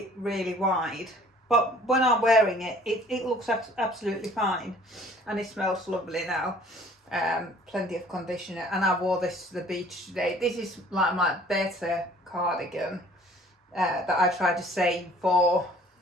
wide, but when I'm wearing it, it looks absolutely fine, and it smells lovely now. Plenty of conditioner, and I wore this to the beach today. This is like my better cardigan that I try to save for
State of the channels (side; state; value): both; normal; correlation 0.53